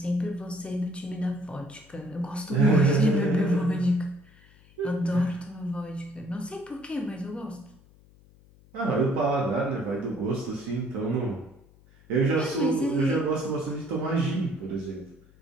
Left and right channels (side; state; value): left; noise; hum, 27 dB below the sound